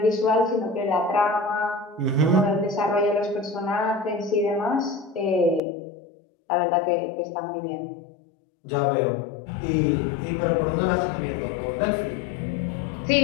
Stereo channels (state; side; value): drops out; right; at 5.6 s